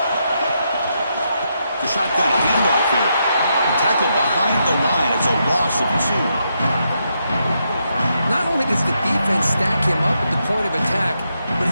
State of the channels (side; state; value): both; inverted; correlation -0.81